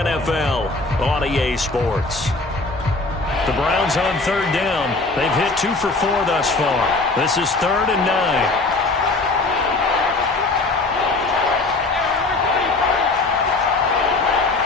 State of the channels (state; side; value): quieter; right; 3.4 dB